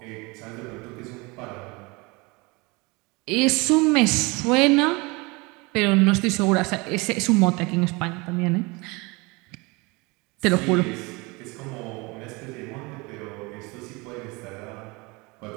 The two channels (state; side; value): quieter; left; 26.1 dB